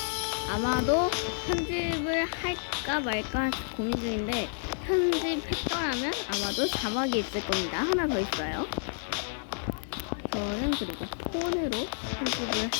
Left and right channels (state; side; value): silent; right; digital silence